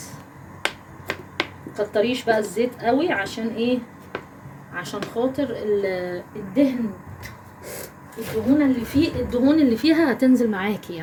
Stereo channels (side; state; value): both; identical; correlation 1.00